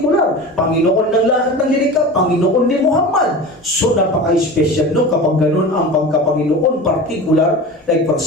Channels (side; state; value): both; normal; correlation 0.32